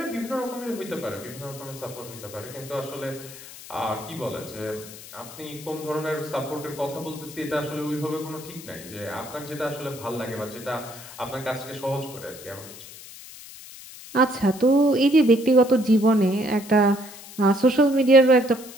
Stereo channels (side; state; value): left; noise; hiss, 16 dB below the sound